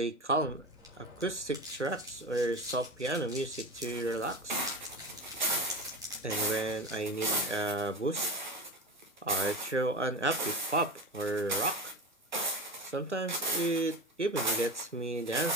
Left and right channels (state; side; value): normal; both; correlation 0.26